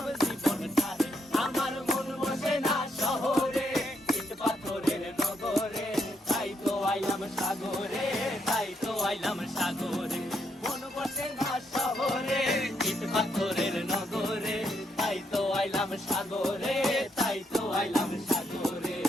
জীবন ধারে। আমার মন বসে না শহরে, ইট পাথরের নগরে, তাই তো আইলাম সাগরে, তাই তো আইলাম সাগরে। মন বসে না শহরে, ইট পাথরের নগরে, তাই তো আইলাম সাগরে, তাই তো আইলাম সাগরে।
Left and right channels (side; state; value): both; normal; correlation 0.76